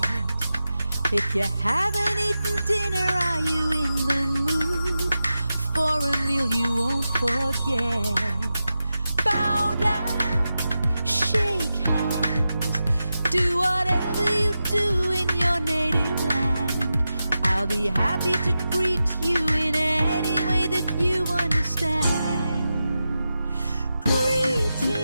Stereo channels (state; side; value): inverted; both; correlation -0.91